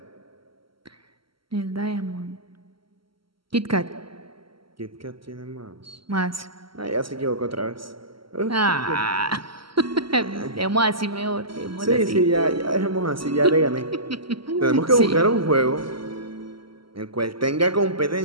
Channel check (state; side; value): late; left; 0.74 ms